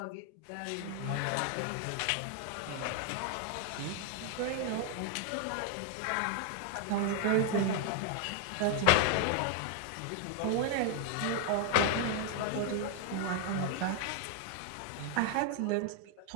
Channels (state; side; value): different; both; correlation 0.00